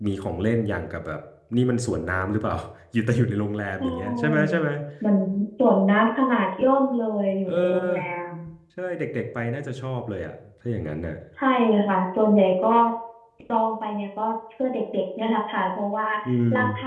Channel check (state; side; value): identical; both; correlation 1.00